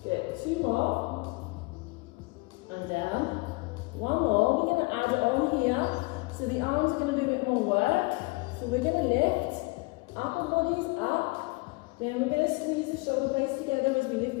Good. 2 more. And down. 1 more. We're going to add it on here. So the arms are going to do a bit more work. So we're going to lift. Upper body is up. Then we're going to squeeze the shoulder blades together as we lift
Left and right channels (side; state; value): right; quieter; 25.8 dB